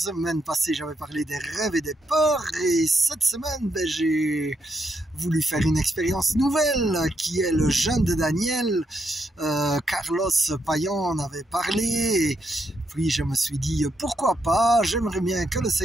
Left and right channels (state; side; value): normal; both; correlation 0.79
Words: passée j'avais parlé des rêves et des peurs et cette semaine j'ai voulu faire une expérience nouvelle qui est le jeûne de Daniel. Carlos Payan en avait parlé et puis je me suis dit pourquoi pas, j'aimerais bien que le